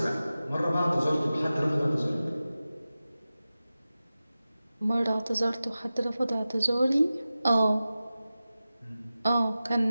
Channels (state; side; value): inverted; both; correlation -0.95